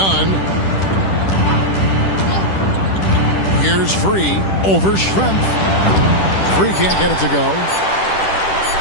Here's Free over Schrempf. Free can't get it to go.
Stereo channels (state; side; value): late; right; 10 ms